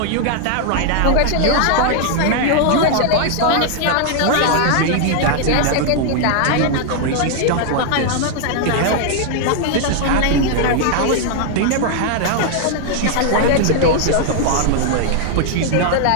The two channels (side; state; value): both; different; correlation 0.00